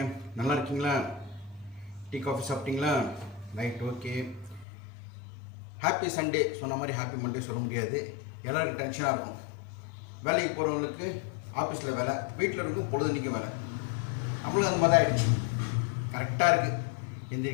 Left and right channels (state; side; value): drops out; right; at 4.7 s